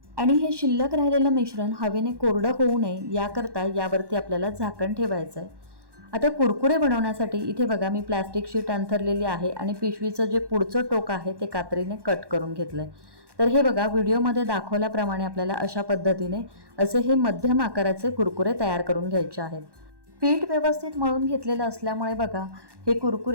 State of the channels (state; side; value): late; left; 1.1 ms